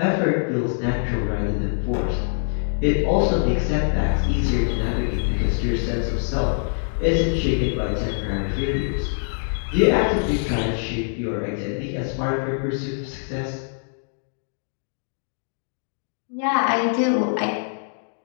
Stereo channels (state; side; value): silent; right; digital silence